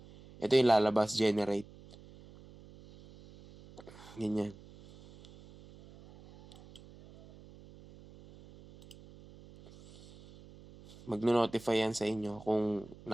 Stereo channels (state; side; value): noise; right; hum, 21 dB below the sound